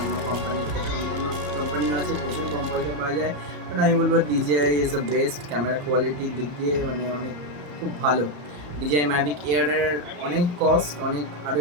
কোম্পানির থেকে, অন্যান্য কোম্পানিও আছে, প্রচুর কম পয়সা পাওয়া যায়, বাট আমি বলবো DJI is the best. Camera কোয়ালিটির দিক দিয়ে মানে অনেক খুব ভালো। DJI Mavic Air-এর অনেক কস্ট, অনেক আরও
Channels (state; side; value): late; left; 34 ms